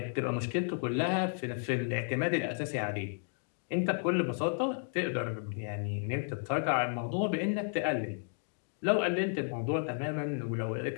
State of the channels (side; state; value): right; silent; 56 dB below the other